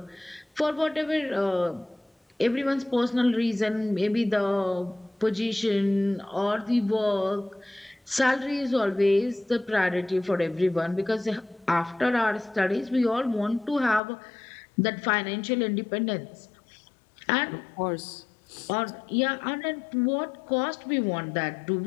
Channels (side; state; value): right; drops out; at 14.0 s